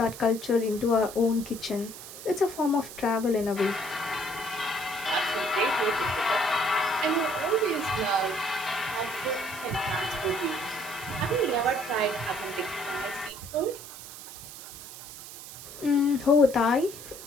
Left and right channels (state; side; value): noise; right; hiss, 13 dB below the sound